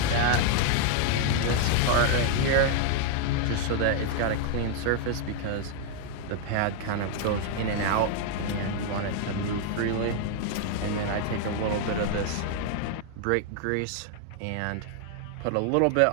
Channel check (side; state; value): both; different; correlation 0.00